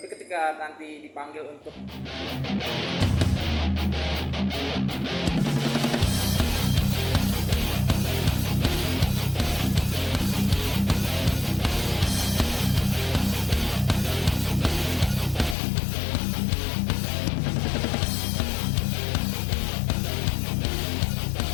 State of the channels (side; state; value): right; drops out; at 15.6 s